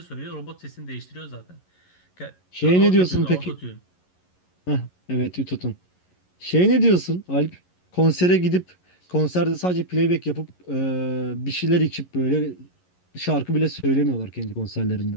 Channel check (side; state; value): right; late; 11 ms